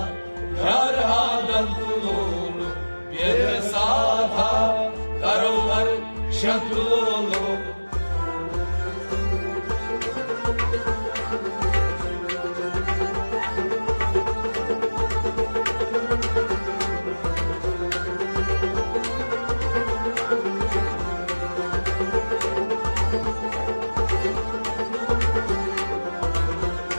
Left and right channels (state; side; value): inverted; both; correlation -1.00